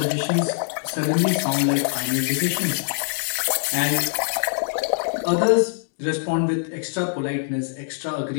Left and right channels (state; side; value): silent; right; digital silence